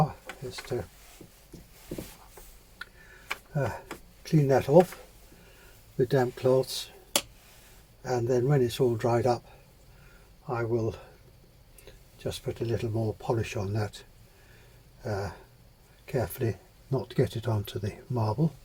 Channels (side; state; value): both; identical; correlation 1.00